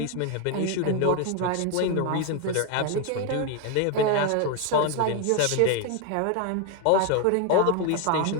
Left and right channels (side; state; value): both; different; correlation 0.01